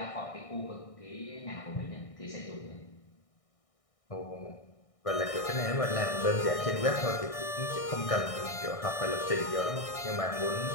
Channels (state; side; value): late; right; 1.6 ms